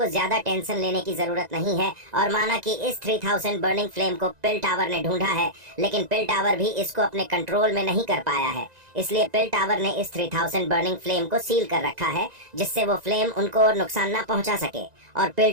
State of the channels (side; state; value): left; late; 2.0 ms